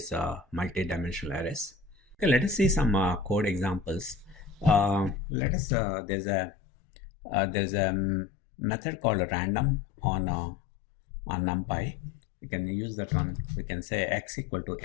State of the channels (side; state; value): right; drops out; at 5.2 s